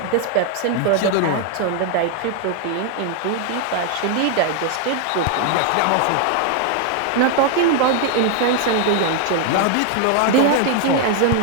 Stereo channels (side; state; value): both; different; correlation 0.00